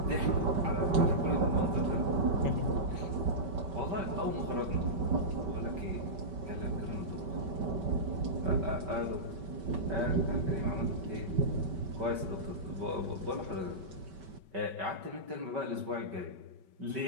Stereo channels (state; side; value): late; left; 5.2 ms